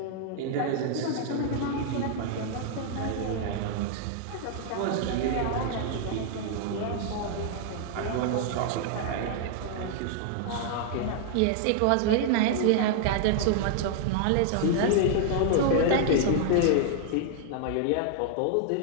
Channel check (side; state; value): both; different; correlation -0.01